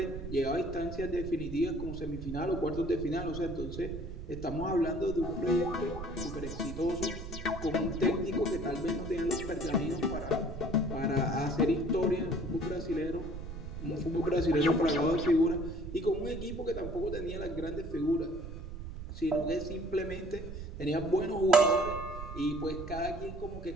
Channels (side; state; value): right; noise; rumble, 9 dB below the sound